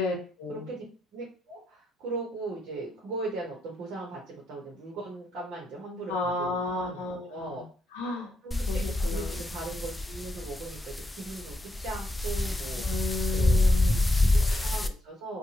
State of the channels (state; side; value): normal; both; correlation 0.80